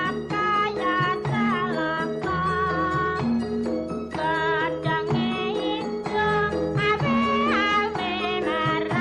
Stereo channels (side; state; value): both; identical; correlation 1.00